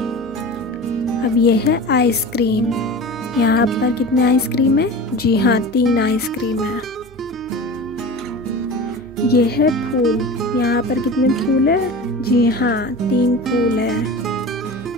अब ये है आइसक्रीम। यहाँ पर कितने आइसक्रीम है? जी हाँ, 3 आइसक्रीम है। ये है फूल। यहाँ पर कितने फूल है? जी हाँ, 3 फूल है।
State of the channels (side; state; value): both; normal; correlation 0.33